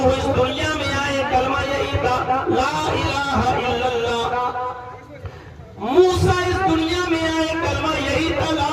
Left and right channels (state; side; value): identical; both; correlation 1.00